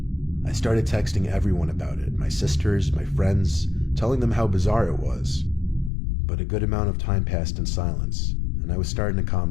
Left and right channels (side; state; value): right; drops out; at 5.9 s